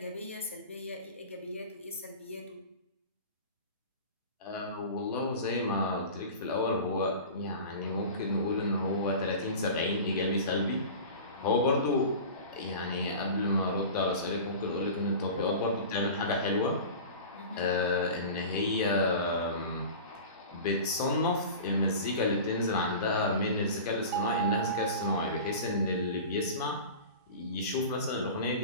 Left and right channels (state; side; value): inverted; both; correlation -0.35